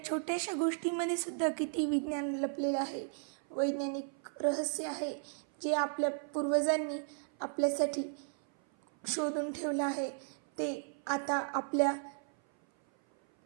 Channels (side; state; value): left; silent; 55 dB below the other